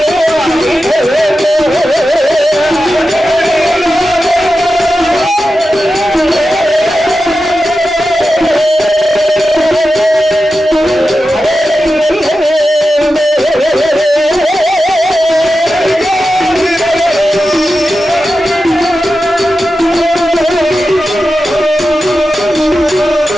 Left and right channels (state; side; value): normal; both; correlation 0.92